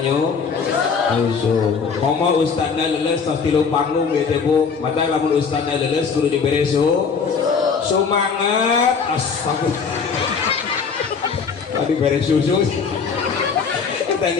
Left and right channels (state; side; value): quieter; right; 5.7 dB